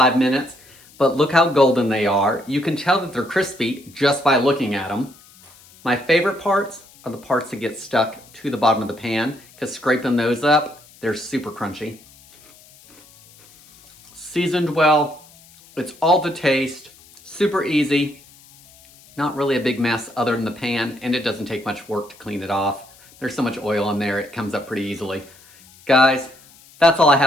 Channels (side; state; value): left; noise; hiss, 25 dB below the sound